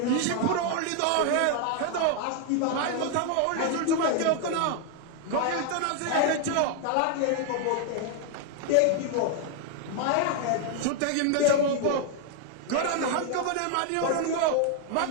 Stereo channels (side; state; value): both; different; correlation 0.00